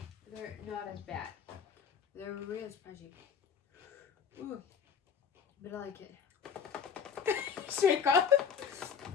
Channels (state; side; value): quieter; right; 7.1 dB